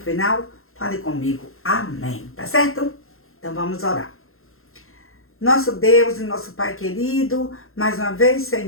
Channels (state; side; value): late; right; 0.61 ms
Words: fale comigo. Amém. Tá certo? Então vamos orar. Nosso Deus e nosso Pai querido, mais uma vez,